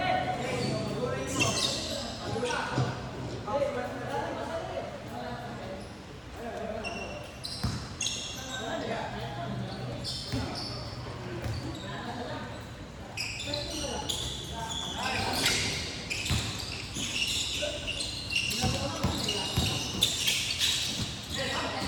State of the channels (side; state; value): both; identical; correlation 1.00